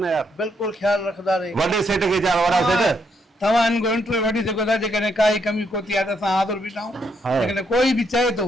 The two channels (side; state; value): both; normal; correlation 0.75